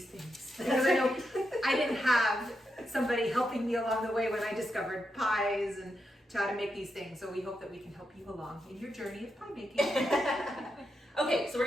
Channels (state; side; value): normal; both; correlation 0.85